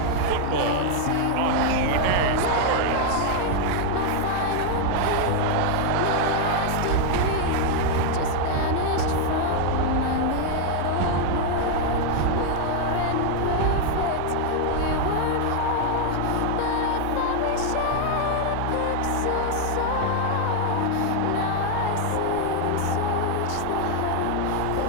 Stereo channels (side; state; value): both; different; correlation 0.00